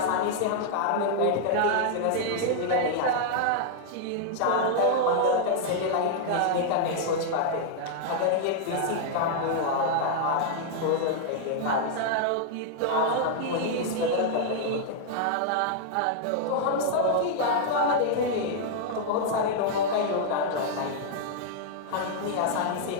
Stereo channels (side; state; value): both; different; correlation -0.01